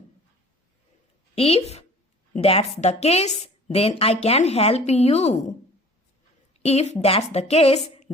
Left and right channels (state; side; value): normal; both; correlation 0.47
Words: If that's the case then I can help you. If that's the case